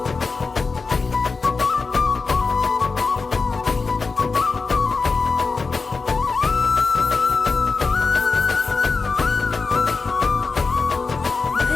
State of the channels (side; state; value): right; quieter; 4.4 dB